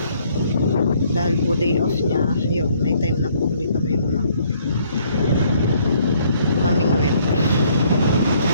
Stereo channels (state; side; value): inverted; both; correlation -0.65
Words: Dahil po day off niya, ayun, may time na po ulit kami mamingwit.